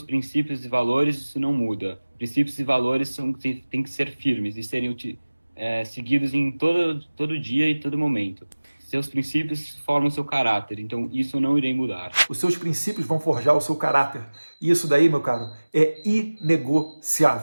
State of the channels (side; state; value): both; inverted; correlation -1.00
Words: princípios e valores, isso não muda. Princípios e valores têm que ser firmes e serem seguidos em todo dia e todo momento. Seus princípios formam seu caráter, então isso eu não irei mudar. Os seus princípios vão forjar o seu caráter. E isso daí, meu caro, é